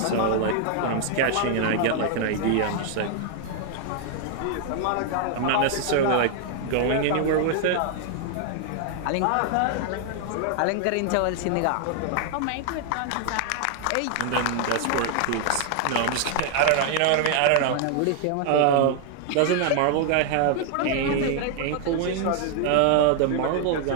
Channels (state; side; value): different; both; correlation 0.00